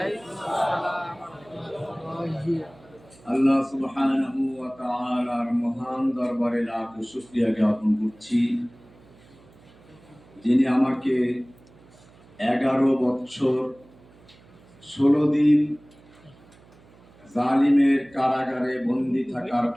আল্লাহ সুবহানাহু ওয়া তাআলার মহান দরবারে লাখ শুকরিয়া জ্ঞাপন করছি, যিনি আমাকে 11 বছর 16 দিন জালিমের কারাগারে বন্দী থাকার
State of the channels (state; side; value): noise; right; hum, 26 dB below the sound